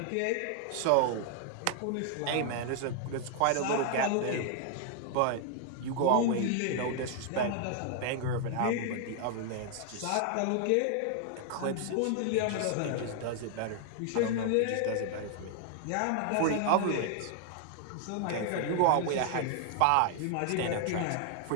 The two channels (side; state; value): both; different; correlation 0.00